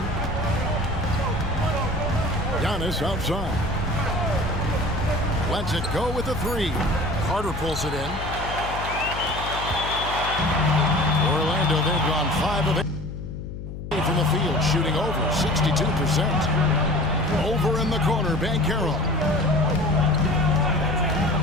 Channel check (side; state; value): left; noise; hum, 9 dB below the sound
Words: Giannis outside. Lets it go with a 3. Carter pulls it in. Orlando, they've gone 5 of 8 from the field, shooting over 62%. Over in the corner, Banchero.